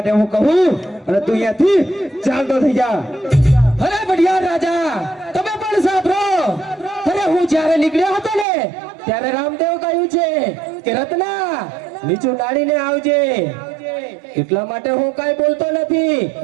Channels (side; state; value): left; drops out; at 8.5 s